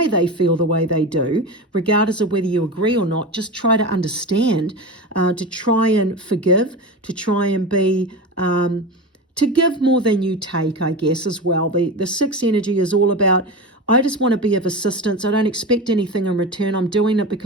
they feel the way they do, regardless of whether you agree or not. Just try to understand, to try and forgive, to try and be... to give more than you take, I guess, as well. The 6 energy is all about, I just want to be of assistance. I don't expect anything in return. I'm doing it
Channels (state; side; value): normal; both; correlation 0.25